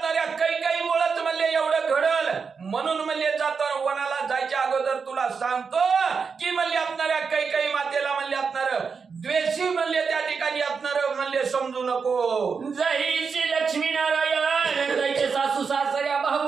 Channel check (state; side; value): quieter; left; 5.5 dB